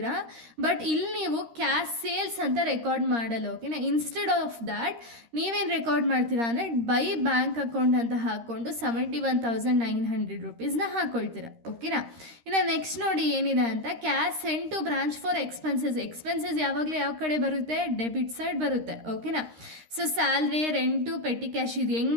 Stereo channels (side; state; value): left; late; 13 ms